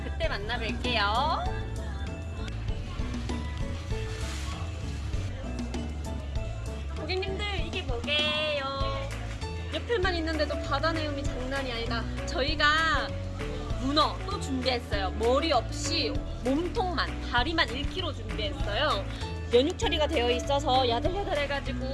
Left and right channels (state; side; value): identical; both; correlation 1.00